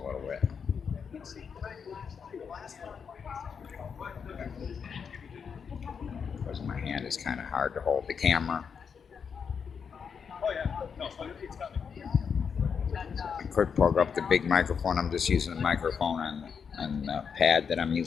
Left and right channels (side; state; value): right; quieter; 6.5 dB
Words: little bit. Because my hand is kind of hard to hold the camera. I could plug up the big microphone. I'm just using the microphone on the pad that I'm